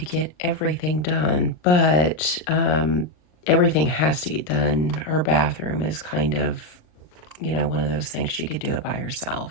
get everything done, but everything has to get done. Her bathroom is kind of, one of those things she could do it by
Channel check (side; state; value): right; late; 39 ms